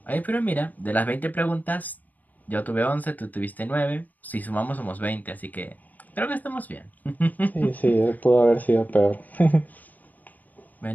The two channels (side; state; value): right; late; 0.082 ms